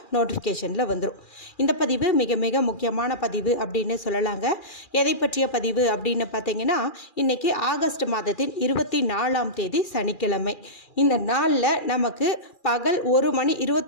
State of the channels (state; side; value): late; right; 2.4 ms